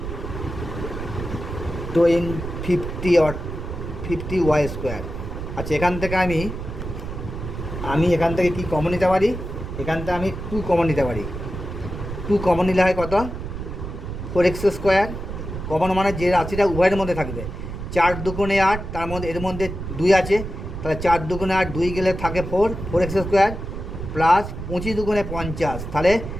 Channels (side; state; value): right; noise; rumble, 7 dB below the sound